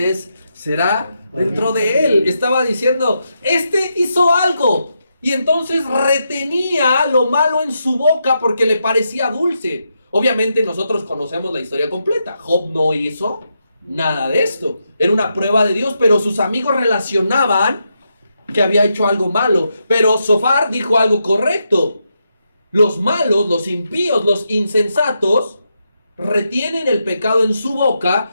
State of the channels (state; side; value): inverted; both; correlation -0.83